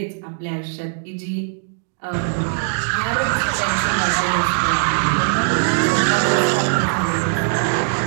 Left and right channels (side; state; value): left; silent; 66 dB below the other